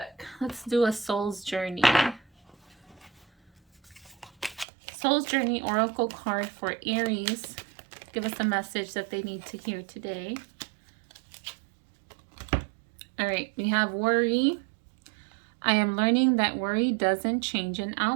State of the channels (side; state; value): left; drops out; at 4.7 s